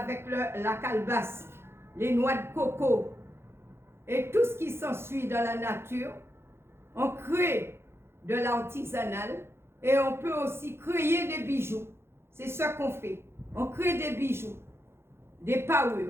la calebasse, les noix de coco et tout ce qui s'ensuit dans la nature. On crée de l'artisanal Et on peut aussi créer des bijoux. C'est ce qu'on fait. On crée des bijoux, des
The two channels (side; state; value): left; late; 0.12 ms